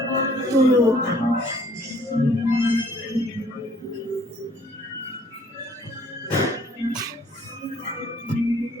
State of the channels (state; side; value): normal; both; correlation 0.59